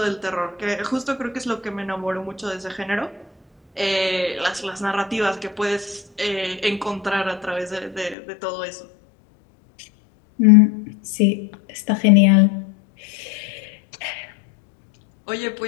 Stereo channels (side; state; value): right; drops out; at 8.2 s